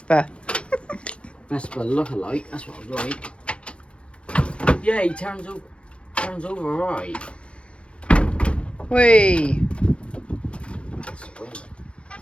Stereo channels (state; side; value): late; right; 0.058 ms